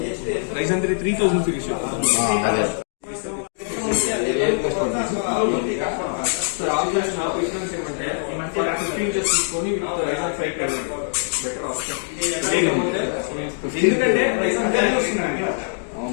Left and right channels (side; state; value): right; silent; digital silence